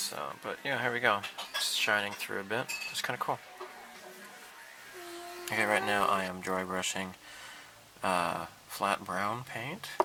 but yeah, here we go. It's shining through a bit. It's kind of cool. Okay, right now I am dry brushing flat brown paint,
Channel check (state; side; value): identical; both; correlation 1.00